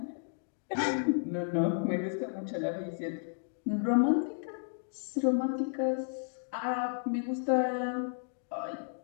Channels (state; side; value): silent; right; digital silence